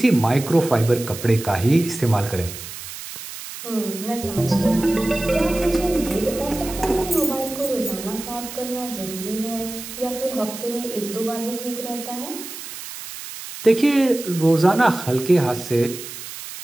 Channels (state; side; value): noise; right; hiss, 11 dB below the sound